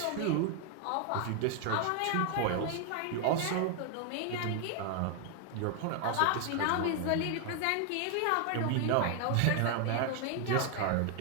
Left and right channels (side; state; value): both; different; correlation 0.01